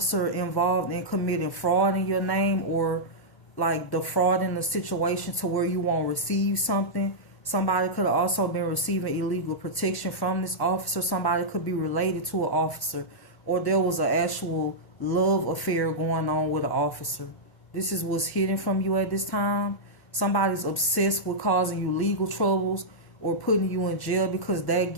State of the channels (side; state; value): right; late; 1.0 ms